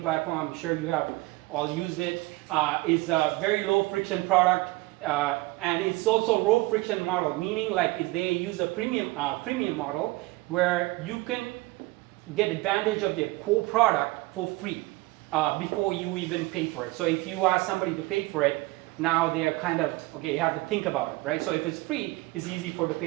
I'm sure you have all used it. Is a very low friction product, and it's also low friction model, meaning like they use a premium model where you can get advantage of their core product for free before you even pay for it. So if you ask somebody to pay for it, now they are kind of, okay, you have to think about it, right? So if it's free, it's easy to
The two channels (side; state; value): left; quieter; 21.5 dB